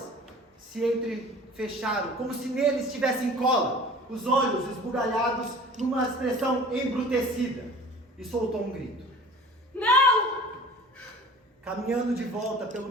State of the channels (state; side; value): normal; both; correlation 0.44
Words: se entrefecharam, como se neles tivessem cola, os olhos esbugalhados numa expressão embrutecida, e soltou um grito. Não! Caminhando de volta pelo